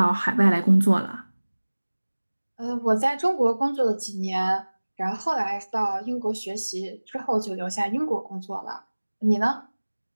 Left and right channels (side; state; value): both; inverted; correlation -1.00